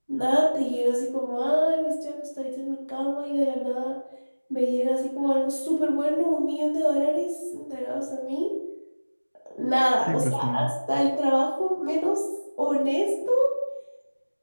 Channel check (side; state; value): both; inverted; correlation -1.00